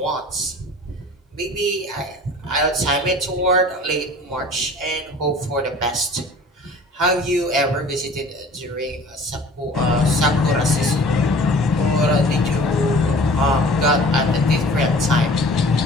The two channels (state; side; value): normal; both; correlation 0.46